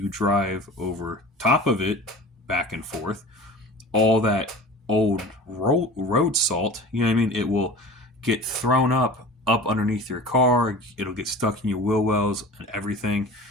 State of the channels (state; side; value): normal; both; correlation 0.38